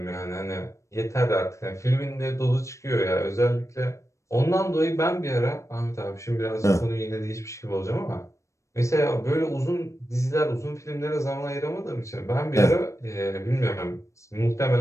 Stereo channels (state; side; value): late; right; 0.15 ms